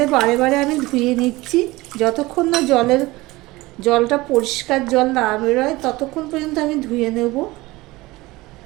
বারে বারে আমি ধুয়ে নিচ্ছি, যতক্ষণ না জলটা পরিষ্কার জল না বেরোয় ততক্ষণ পর্যন্ত আমি ধুয়ে নেব।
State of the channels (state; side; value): quieter; left; 20.3 dB